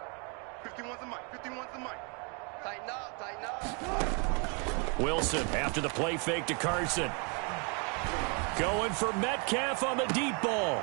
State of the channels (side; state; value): left; quieter; 34.6 dB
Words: 51's the mic. Tighten up. Wilson after the play fake to Carson. Going for Metcalf on the deep